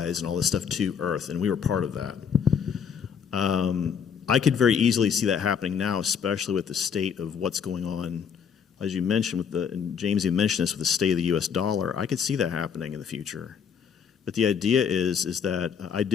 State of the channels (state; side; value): quieter; right; 7.2 dB